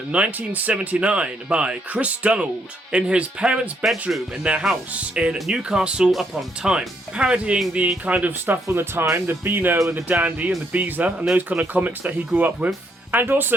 1979 by Chris Donald in his parents' bedroom in their house in Newcastle upon Tyne, parodying the kind of stuff from the time, the Beano and the Dandy and the Beezer and those kind of comics that he grew up with. And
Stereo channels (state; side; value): normal; both; correlation 0.73